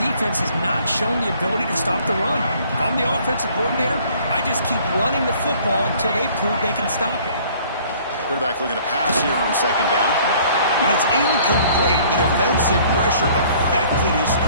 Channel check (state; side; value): inverted; both; correlation -0.55